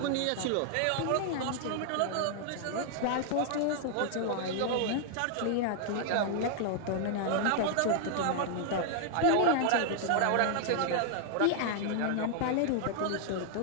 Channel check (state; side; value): different; both; correlation 0.00